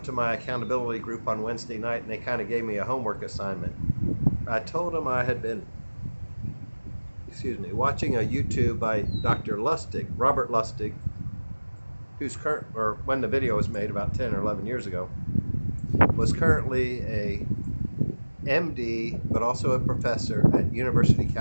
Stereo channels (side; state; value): both; inverted; correlation -1.00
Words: to my accountability group on Wednesday night, and they kind of gave me a homework assignment. I told them I had been, watching a YouTube by Dr. Lustig, Robert Lustig, who's current, or when the video was made about 10 or 11 years ago, was currently a MD, but also a professor at University of